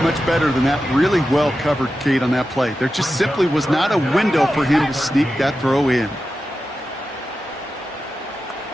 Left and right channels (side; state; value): both; normal; correlation 0.91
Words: much better than that. Really well covered, Kate, on that play. There just simply was not a window for him to sneak that throw in.